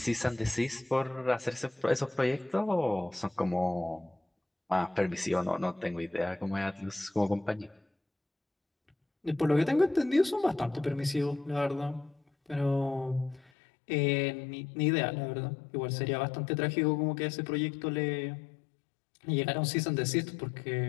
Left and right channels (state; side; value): drops out; right; at 13.5 s